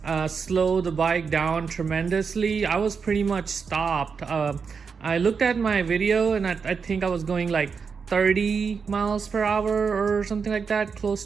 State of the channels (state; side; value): quieter; left; 5.7 dB